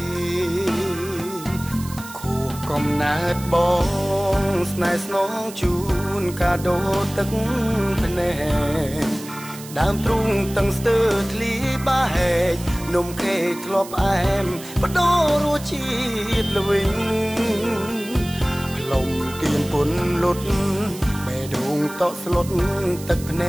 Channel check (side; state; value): right; noise; hiss, 15 dB below the sound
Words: ខួបកំណើតបងស្នេហ៍ស្នងជូនកាដូទឹកភ្នែកដើមទ្រូងតឹងស្ទើរធ្លីបាហែកនំខេកធ្លាប់អែមបដូររសជាតិល្វីងលំទៀនពុនលុតដងតក់ស្លុតទឹកភ្ន